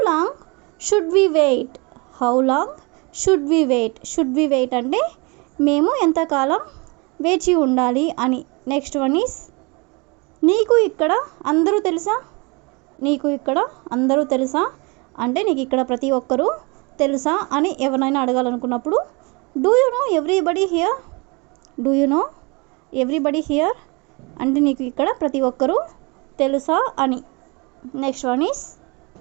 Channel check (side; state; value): left; quieter; 28.9 dB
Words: long should we wait అంటే మేము ఎంతకాలం వేచి ఉండాలి అని. నెక్స్ట్ వన్ ఈస్ నీకు ఇక్కడ అందరూ తెలుసా అంటే నీకు ఇక్కడ ప్రతి ఒక్కరూ తెలుసా అని ఎవరైనా అడగాలనుకున్నప్పుడు do you know everybody here అంటే నీకు ఇక్కడ ప్రతి ఒక్కరూ తెలుసా అని. నెక్స్ట్ వన్ ఈస్